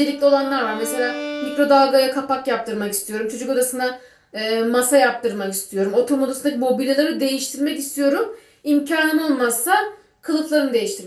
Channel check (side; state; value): both; identical; correlation 1.00